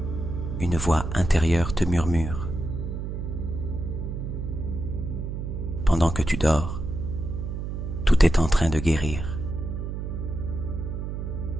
une voix intérieure te murmure. Pendant que tu dors, tout est en train de guérir.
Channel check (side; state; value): right; noise; hum, 5 dB below the sound